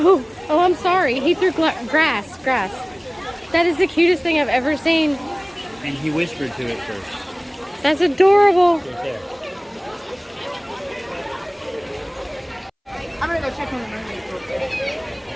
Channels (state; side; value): identical; both; correlation 1.00